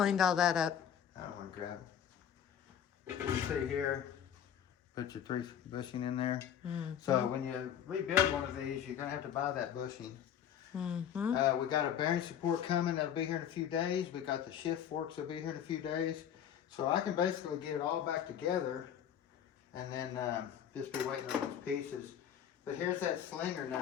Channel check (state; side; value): quieter; right; 9.2 dB